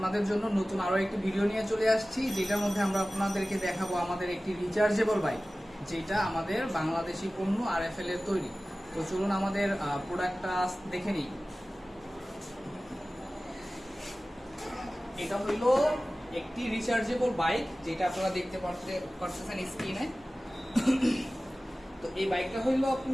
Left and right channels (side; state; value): both; normal; correlation 0.97